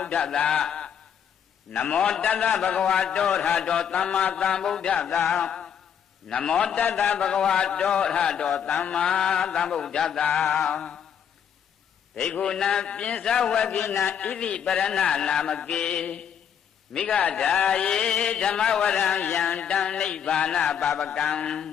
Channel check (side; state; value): right; quieter; 8.3 dB